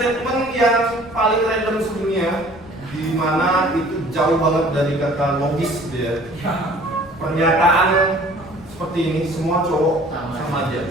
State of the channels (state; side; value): noise; left; rumble, 22 dB below the sound